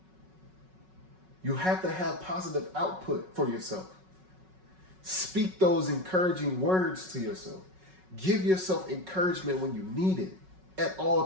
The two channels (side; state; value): left; late; 5.4 ms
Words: You have to have positive output for yourself. Speak those encouraging words to yourself. Give yourself encouragement when you need it at all